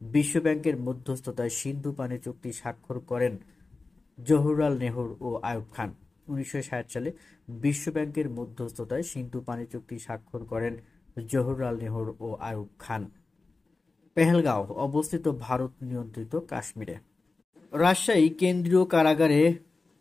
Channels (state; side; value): quieter; right; 3.7 dB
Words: বিশ্বব্যাংকের মধ্যস্থতায় সিন্ধু পানি চুক্তি স্বাক্ষর করেন জওহরলাল নেহরু ও আইয়ুব খান। 1960 সালে বিশ্বব্যাংকের মধ্যস্থতায় সিন্ধু পানি চুক্তি স্বাক্ষর করেন জওহরলাল নেহরু ও আইয়ুব খান। পেহেলগাঁও অবস্থিত ভারত নিয়ন্ত্রিত কাশ্মীরে। রাজশাহী কেন্দ্রীয় কারাগারে